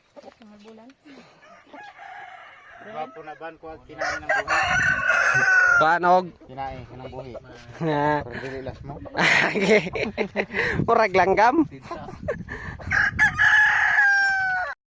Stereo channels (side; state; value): both; identical; correlation 1.00